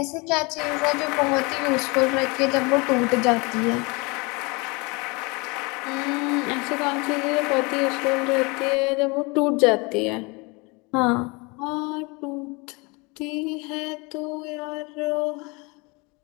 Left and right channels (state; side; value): quieter; right; 27.9 dB